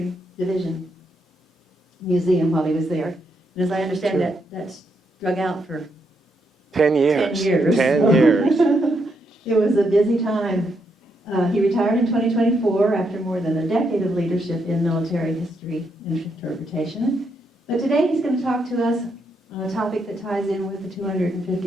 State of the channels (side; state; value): both; normal; correlation 0.79